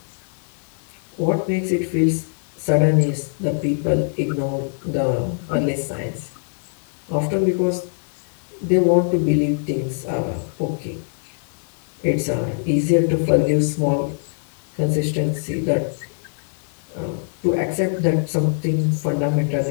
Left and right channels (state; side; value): silent; right; 64 dB below the other